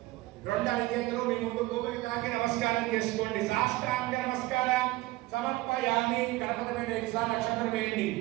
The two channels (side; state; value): left; quieter; 18.9 dB